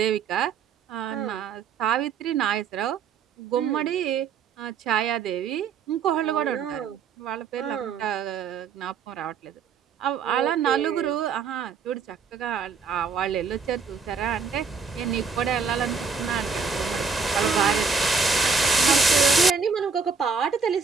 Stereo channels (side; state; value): left; quieter; 5.4 dB